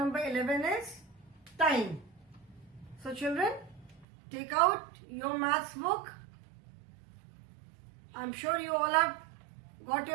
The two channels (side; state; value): left; drops out; at 4.0 s